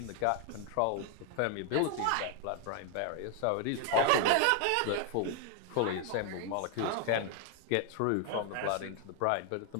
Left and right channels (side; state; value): both; different; correlation 0.01